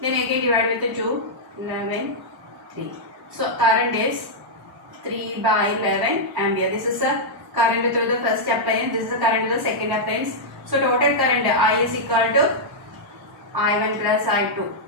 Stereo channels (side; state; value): both; normal; correlation -0.07